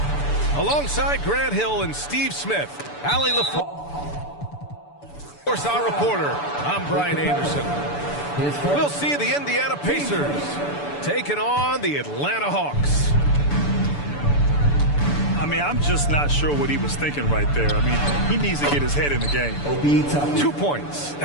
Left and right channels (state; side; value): late; right; 6.9 ms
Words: Alongside Grant Hill and Steve Smith, Allie LaFleur, of course, our reporter, I'm Brian Anderson. We'll see the Indiana Pacers taking on the Atlanta Hawks. I mean, I'm just not sure what he was thinking right there. I mean, he needs to get his head in the game. 2 points.